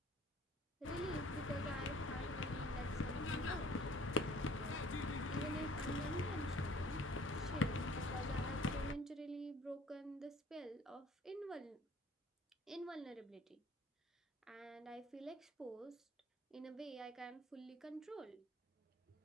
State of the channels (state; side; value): normal; both; correlation 0.53